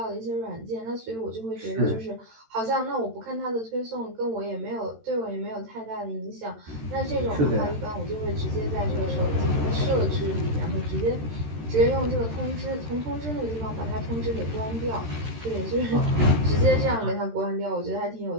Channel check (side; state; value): left; late; 13 ms